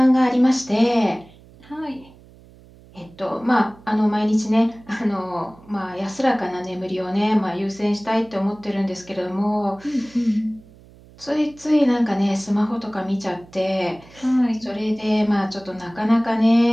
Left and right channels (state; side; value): noise; right; hum, 24 dB below the sound